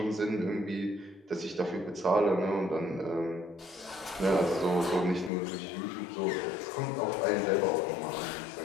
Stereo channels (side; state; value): right; drops out; at 5.3 s